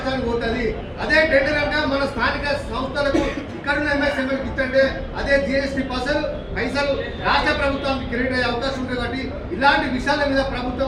పోతుంది. అదే టెండర్ అంటే మన స్థానిక సంస్థలకు ఇక్కడున్న ఎంఎస్ఎంఎల్కి ఇచ్చంటే అదే జిఎస్టీ పైసలు రాష్ట్ర ప్రభుత్వానికి క్రెడిట్ అయ్యే అవకాశం ఉంటుంది. కాబట్టి ఇలాంటి విషయాల మీద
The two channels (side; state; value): both; identical; correlation 1.00